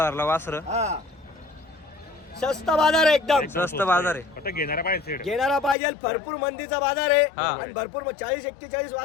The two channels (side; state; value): right; drops out; at 5.8 s